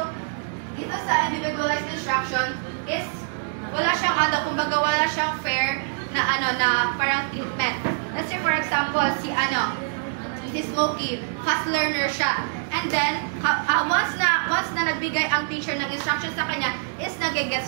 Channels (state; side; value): silent; left; 58 dB below the other